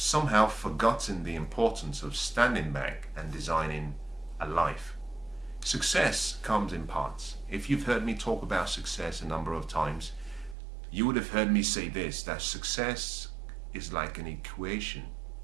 forgotten the importance of standing back and designing a life. Success comes in parts. If you've heard me talk about success a number of times, you would have heard me say this, that success is like an equation.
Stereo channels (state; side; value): drops out; left; at 10.6 s